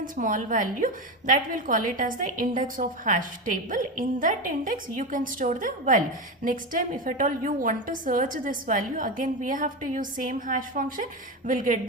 small value that will call it as the index of hash table. In that index, you can store the value. Next time, if at all you want to search this value, again we have to use same hash function. We'll get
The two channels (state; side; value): normal; both; correlation 0.18